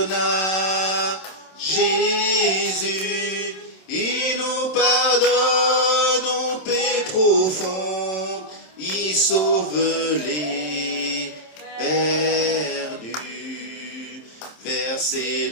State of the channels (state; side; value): late; right; 27 ms